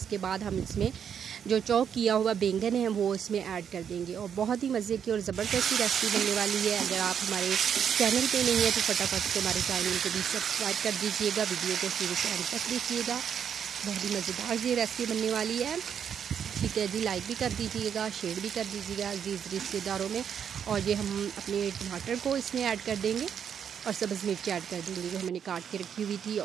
बाद हम इसमें जो चॉप किया हुआ बैंगन है वो इसमें ऐड कर देंगे। और बहुत ही मज़े की और ज़बरदस्त रेसिपी बनने वाली है। अगर आप हमारे चैनल पे नहीं है तो फटाफट से हमारे चैनल को भी सब्सक्राइब कर दीजिएगा, वीडियो को शुरू से अंत तक देखिएगा। बहुत ही मज़ेदार ये रेसिपी बनने वाली है। ठीक है जी, लाइक भी कर दीजिएगा, शेयर भी कर दीजिएगा अजीज़ रिश्तेदारों में। और ये हम अपने टमाटर को इसमें ऐड कर देंगे और सब्ज़ मिर्च ऐड कर देंगे जो मैंने काट के रखी हुई थी।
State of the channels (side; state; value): left; quieter; 8.0 dB